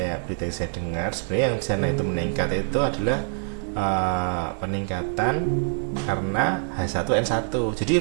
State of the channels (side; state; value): left; silent; 58 dB below the other